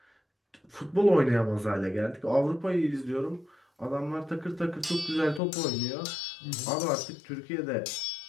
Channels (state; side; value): drops out; right; at 5.4 s